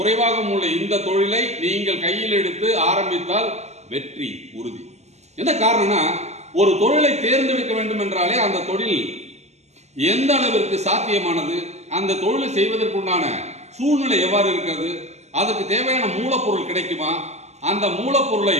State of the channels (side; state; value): left; late; 0.32 ms